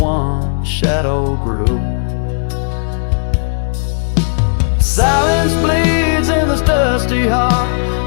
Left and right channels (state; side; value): silent; right; 70 dB below the other